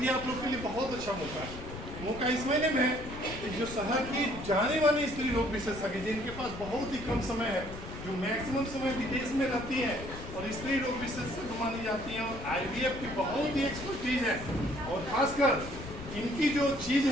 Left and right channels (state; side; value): noise; left; rumble, 11 dB below the sound